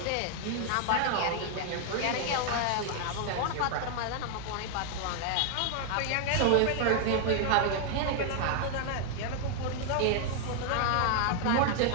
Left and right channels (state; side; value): different; both; correlation 0.00